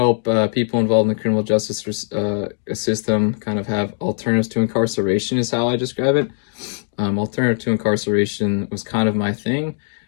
people involved in the criminal justice system kind of have alternatives to incarceration is how I describe it. Alternative to incarceration was kind of my thing.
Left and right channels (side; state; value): right; silent; digital silence